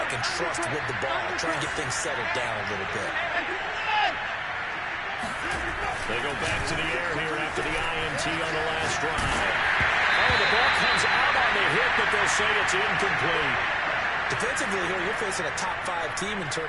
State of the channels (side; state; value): both; identical; correlation 1.00